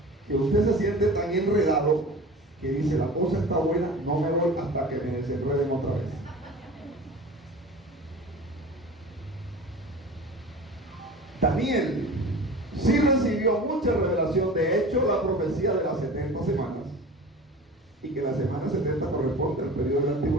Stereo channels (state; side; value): normal; both; correlation 0.37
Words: que usted se siente tan enredado que dice, la cosa está buena, no me voy hasta que me desenreden otra vez. Daniel sí recibió mucha revelación. De hecho, la profecía de las 70 semanas, y que la semana 70 corresponde al periodo de la